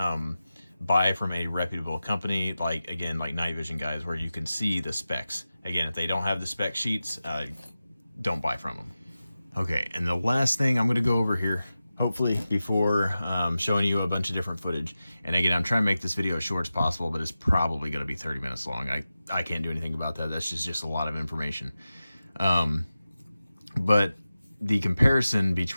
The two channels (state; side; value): inverted; both; correlation -0.94